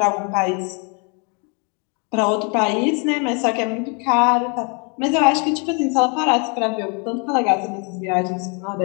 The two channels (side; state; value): right; quieter; 35.6 dB